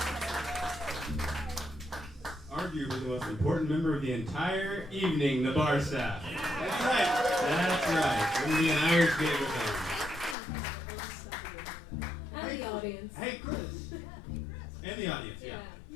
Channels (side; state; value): right; drops out; at 10.4 s